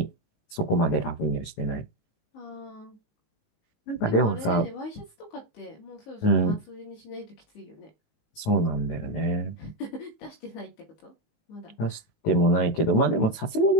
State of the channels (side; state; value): right; late; 18 ms